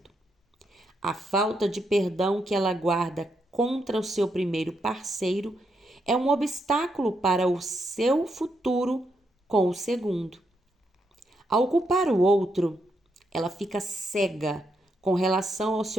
A falta de perdão que ela guarda contra o seu primeiro parceiro é um obstáculo para o seu futuro com o segundo. Ao culpar o outro, ela fica cega com relação ao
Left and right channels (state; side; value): normal; both; correlation 0.80